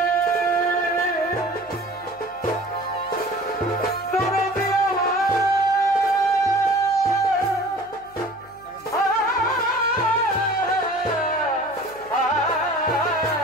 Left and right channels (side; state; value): left; noise; hum, 26 dB below the sound